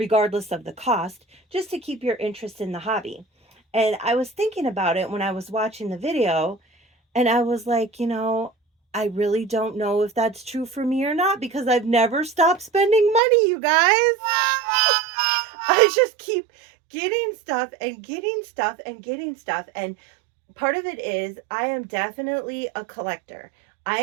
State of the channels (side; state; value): left; drops out; at 13.2 s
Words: of the cost, just to keep your interest in the hobby. And I was thinking about it when I was watching the video, and I was like, I really don't know if that's true for me or not, because I've never stopped spending money, you guys. I just keep getting stuff and getting stuff and getting stuff. And part of it is I am definitely a collector.